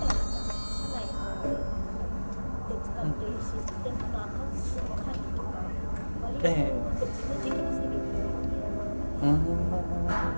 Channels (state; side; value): inverted; both; correlation -1.00